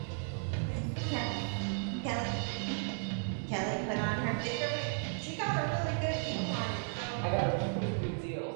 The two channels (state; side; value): silent; left; 55 dB below the other